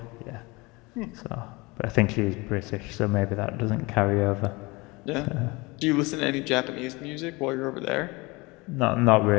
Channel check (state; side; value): quieter; right; 24.5 dB